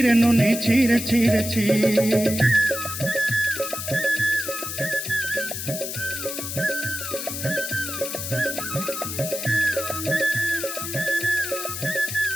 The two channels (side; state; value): left; noise; hiss, 5 dB below the sound